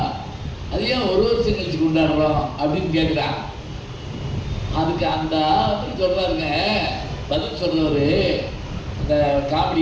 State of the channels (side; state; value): both; identical; correlation 1.00